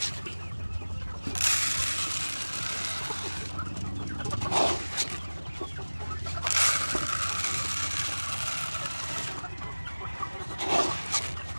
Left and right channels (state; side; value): inverted; both; correlation -1.00